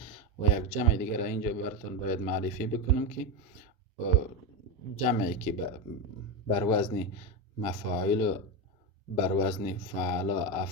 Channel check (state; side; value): normal; both; correlation 0.13